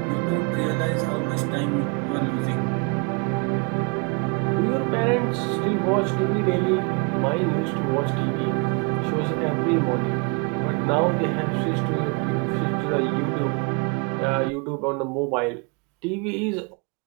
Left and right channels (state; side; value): quieter; left; 32.3 dB